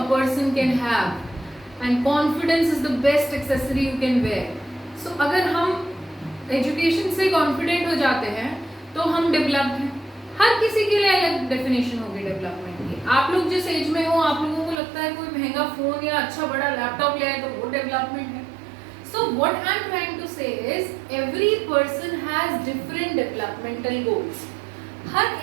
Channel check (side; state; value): left; drops out; at 14.8 s